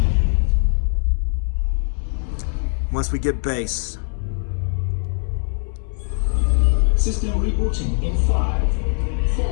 Once we get base. System rebooting in 5,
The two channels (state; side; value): silent; right; 63 dB below the other